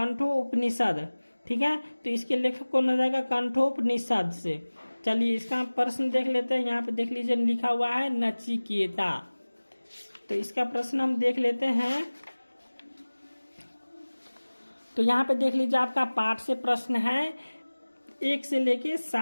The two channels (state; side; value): inverted; both; correlation -1.00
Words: ठीक है, तो इसके लेखक कौन हो जाएगा? कंठोपनिषद से। चलिए इसका प्रश्न देख लेते हैं। यहाँ पे देख लीजिए लिखा हुआ है नचिकेता। तो इसका प्रश्न हम देख लेते हैं। तो यहाँ पे देख लीजिए आपका पाठ से प्रश्न है 1 से लेके